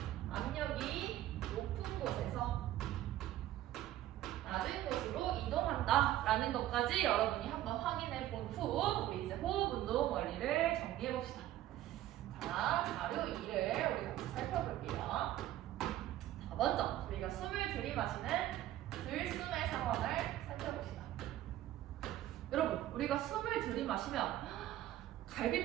압력이 높은 곳에서 낮은 곳으로 이동한다라는 것까지 여러분이 한번 확인해 본 후 우리 이제 호흡 운동 원리를 정리해 봅시다. 자, 자료 2를 우리 같이 살펴볼게요. 자, 먼저 우리가 숨을 들이마시는 들숨의 상황을 살펴봅시다. 여러분, 우리가 숨을 들이마시면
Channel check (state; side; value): quieter; left; 13.8 dB